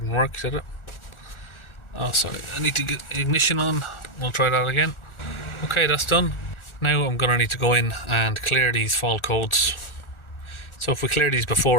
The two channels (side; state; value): right; late; 1.4 ms